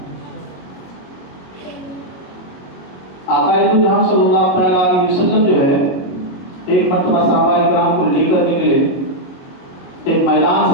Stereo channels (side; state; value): right; late; 22 ms